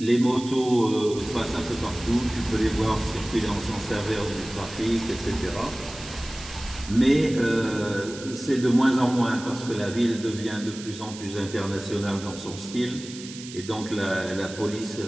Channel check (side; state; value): right; noise; hiss, 14 dB below the sound